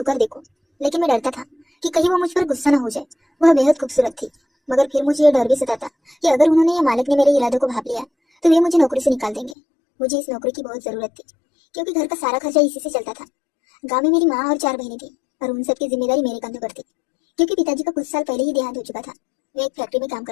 देखूं, लेकिन मैं डरता था कि कहीं वो मुझ पर गुस्सा न हो जाए। वह बेहद खूबसूरत थी, मगर फिर मुझे यह डर भी सताता कि अगर उन्होंने या मालिक ने मेरे इरादों को भांप लिया तो वे मुझे नौकरी से निकाल देंगे। मुझे इस नौकरी की बहुत जरूरत थी, क्योंकि घर का सारा खर्चा इसी से चलता था। गाँव में मेरी माँ और 4 बहनें थी, और उन सबकी जिम्मेदारी मेरे कंधों पर थी, क्योंकि पिताजी का कुछ साल पहले ही देहांत हो चुका था। वे एक फैक्ट्री में काम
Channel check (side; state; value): right; drops out; at 9.6 s